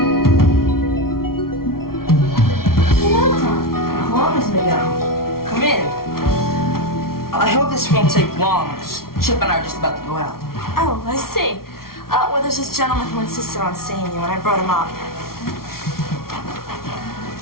Come in. I hope this won't take long. Chip and I are just about to go out. Oh, I see. Well, there's this gentleman who insisted on seeing you, and I brought him up.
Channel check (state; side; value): late; right; 0.93 ms